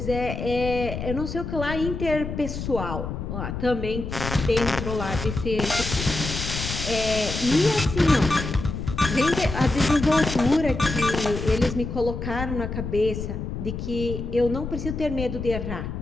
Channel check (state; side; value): noise; left; rumble, 5 dB below the sound